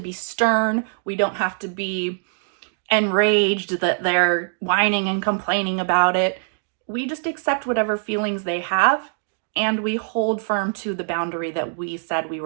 stern. We don't have to be enraged that they're whining and complaining about it. We just accept whatever feelings they have, and we hold firm to the boundary that we said we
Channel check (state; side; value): silent; left; 61 dB below the other